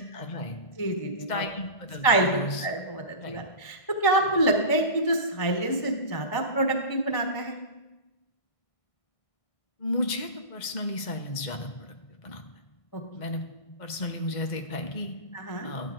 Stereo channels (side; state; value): right; late; 1.6 ms